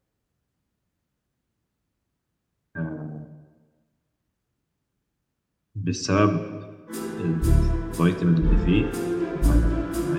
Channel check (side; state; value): both; identical; correlation 1.00